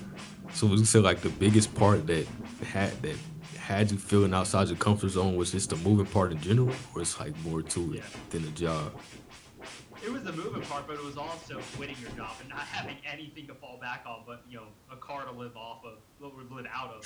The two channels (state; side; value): identical; both; correlation 1.00